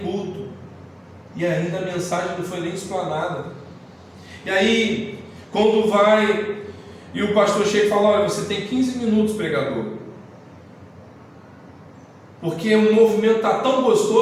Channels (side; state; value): both; identical; correlation 1.00